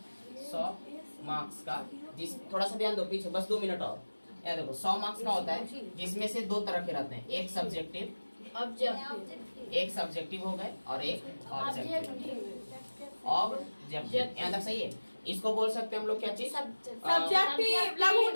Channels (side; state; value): both; inverted; correlation -1.00